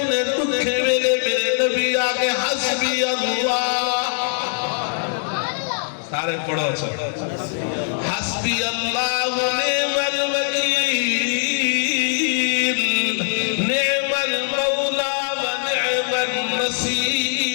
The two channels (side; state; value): right; silent; digital silence